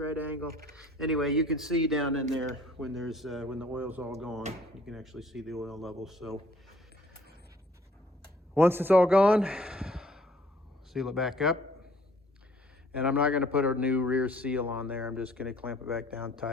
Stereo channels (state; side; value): normal; both; correlation 0.58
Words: angle. Anyway, you can see down in there when there's when the oil's all gone, you can actually see the oil level. So once it's all gone, seal it back up. And I'm not going to put a new rear seal on there. I'm just going to clamp it back down